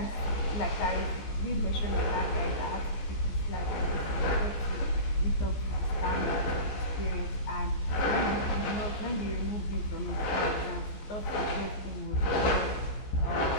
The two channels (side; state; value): right; late; 14 ms